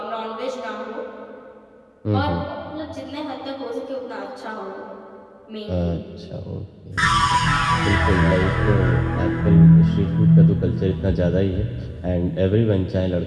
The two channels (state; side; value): identical; both; correlation 1.00